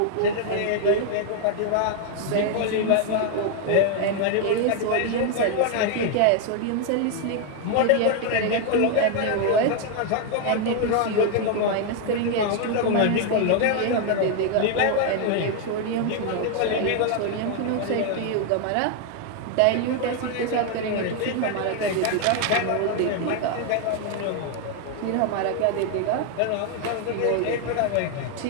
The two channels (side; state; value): both; different; correlation 0.00